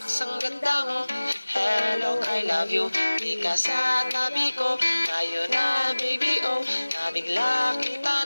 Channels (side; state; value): both; inverted; correlation -1.00